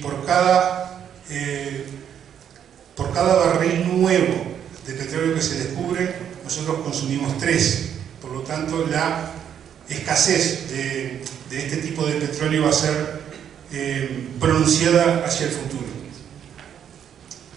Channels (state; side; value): quieter; left; 9.0 dB